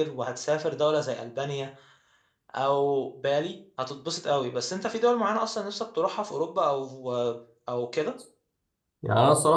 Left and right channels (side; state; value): both; identical; correlation 1.00